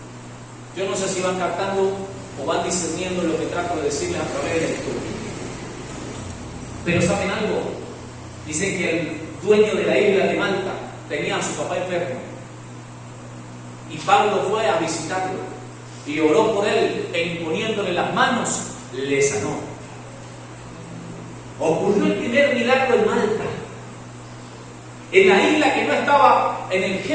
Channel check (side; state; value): both; identical; correlation 1.00